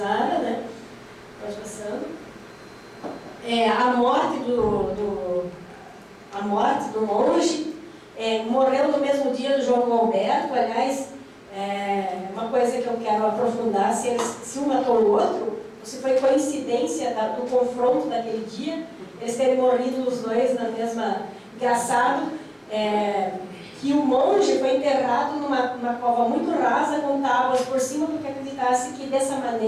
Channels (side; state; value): both; identical; correlation 1.00